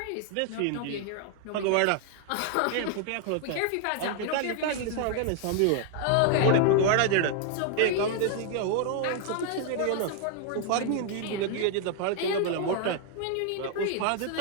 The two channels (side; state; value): both; different; correlation 0.00